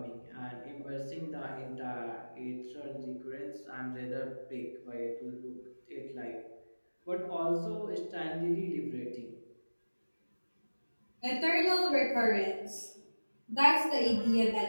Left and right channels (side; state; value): both; inverted; correlation -1.00